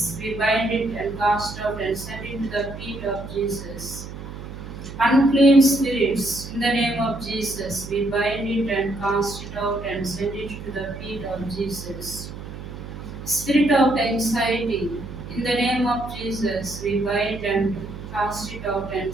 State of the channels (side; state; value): right; noise; hum, 11 dB below the sound